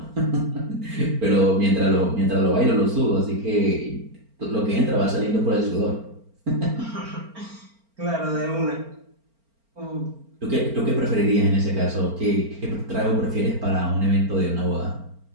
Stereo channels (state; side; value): late; left; 4.4 ms